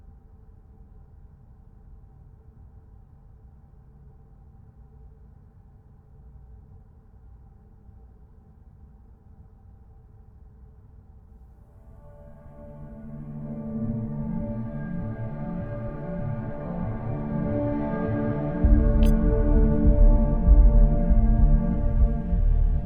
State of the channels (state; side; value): identical; both; correlation 1.00